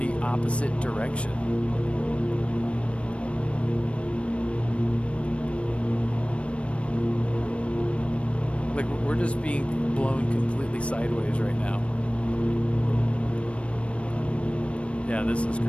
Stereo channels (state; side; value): late; right; 0.061 ms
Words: opposite direction. Like we're just being blown completely sideways right now. Yeah, this is